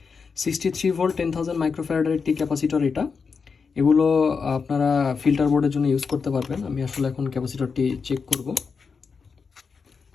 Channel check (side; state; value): right; quieter; 5.4 dB